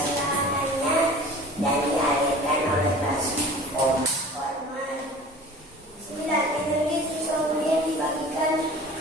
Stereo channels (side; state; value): both; normal; correlation 0.42